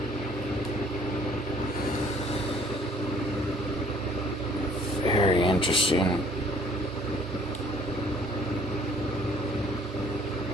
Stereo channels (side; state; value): both; normal; correlation 0.58